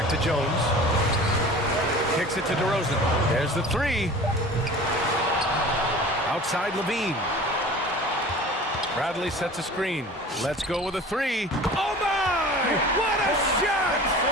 to Jones. Kicks it to DeRozan. There's the 3. Outside Levine. Bradley sets a screen. Let's go with a 3. Oh my! What a shot!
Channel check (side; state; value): both; normal; correlation 0.41